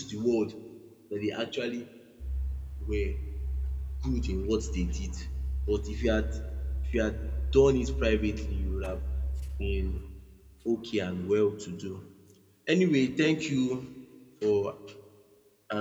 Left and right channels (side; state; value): both; identical; correlation 1.00